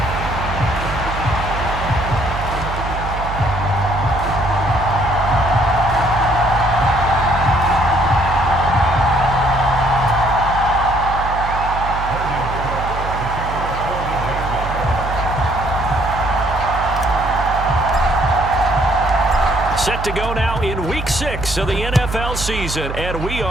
Set to go now in Week 6 of the NFL season, and we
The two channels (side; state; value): right; noise; hum, 6 dB below the sound